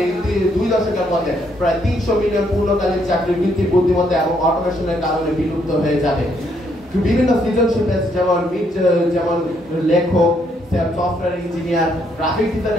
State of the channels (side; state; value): both; normal; correlation 0.72